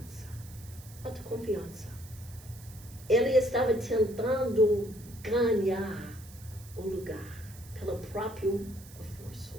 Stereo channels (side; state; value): right; noise; hiss, 20 dB below the sound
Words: Ele estava tentando ganhar o lugar pelo próprio esforço.